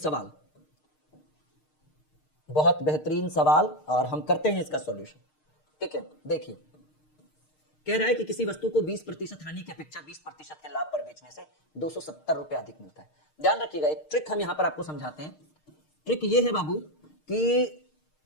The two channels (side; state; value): right; late; 6.5 ms